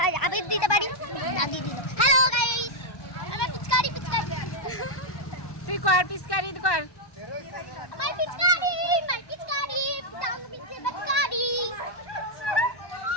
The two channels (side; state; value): right; late; 1.1 ms